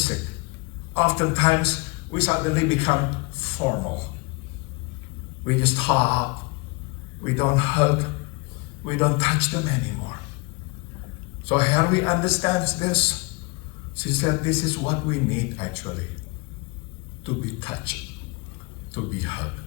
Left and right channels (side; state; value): right; quieter; 27.5 dB